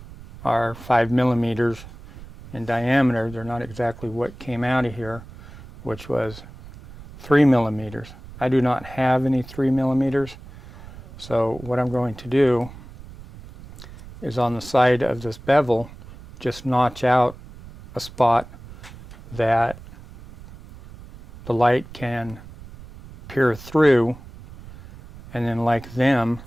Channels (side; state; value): right; noise; rumble, 17 dB below the sound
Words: are 5 millimeters in diameter. They're not exactly what came out of here, which was 3 millimeters. I do not have any 3 millimeters, so what I'm going to do is on the side of this bevel just notch out a spot that the light can peer through, and then like them,